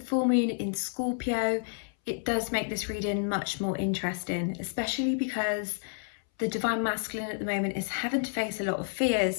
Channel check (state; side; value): silent; right; 58 dB below the other